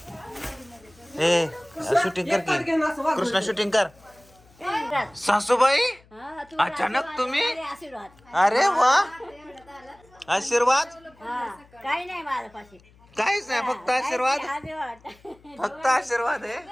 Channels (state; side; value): noise; left; hum, 28 dB below the sound